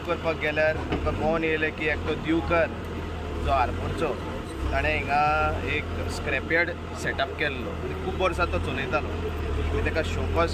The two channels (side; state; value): both; identical; correlation 1.00